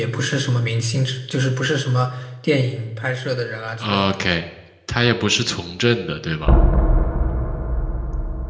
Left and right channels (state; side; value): identical; both; correlation 1.00